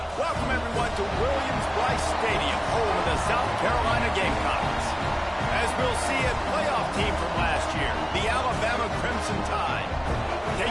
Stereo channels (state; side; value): identical; both; correlation 1.00